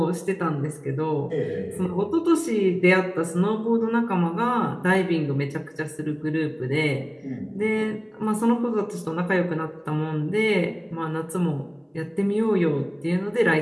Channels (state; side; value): identical; both; correlation 1.00